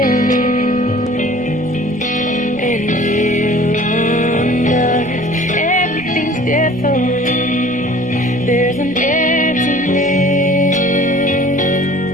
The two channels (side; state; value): left; noise; rumble, 23 dB below the sound